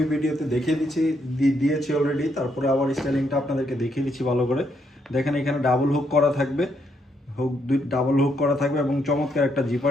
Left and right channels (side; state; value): both; normal; correlation 0.76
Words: ভিডিওতে দেখিয়ে দিয়েছি অলরেডি, তারপরে আবার স্টাইলিংটা আপনাদেরকে দেখিয়ে দিচ্ছি ভালো করে। দেখেন এখানে ডাবল হুক করা থাকবে, ডাবল হুক করা থাকবে এবং চমৎকার একটা